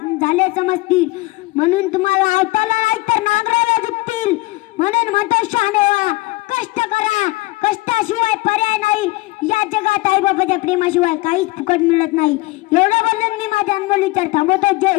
झाले समजतील. म्हणून तुम्हाला आवताला नाही तर नांगराला झुकतील. म्हणून म्हणतो शहाणे व्हा, कष्ट करा, कष्टाशिवाय पर्याय नाही. या जगात आई बाबाच्या प्रेमाशिवाय काहीच फुकट मिळत नाही. एवढं बोलून मी माझा अनमोल विचार थांबवतो.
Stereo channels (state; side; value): quieter; right; 21.7 dB